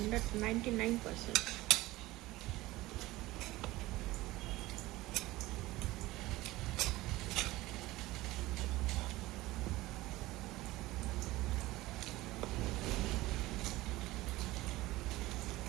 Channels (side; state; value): left; quieter; 18.4 dB